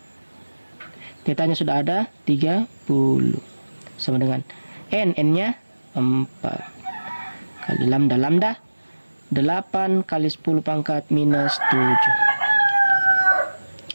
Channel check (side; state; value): both; inverted; correlation -1.00